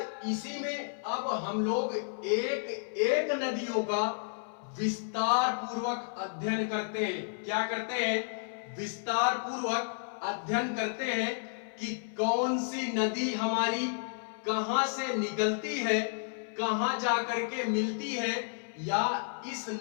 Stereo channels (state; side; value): silent; right; 55 dB below the other